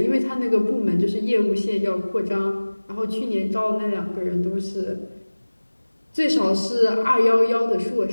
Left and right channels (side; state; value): both; inverted; correlation -1.00